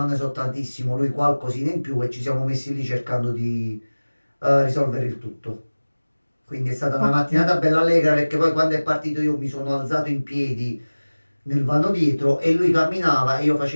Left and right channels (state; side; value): inverted; both; correlation -1.00